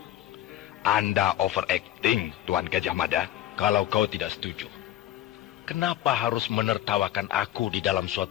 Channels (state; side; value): quieter; right; 13.2 dB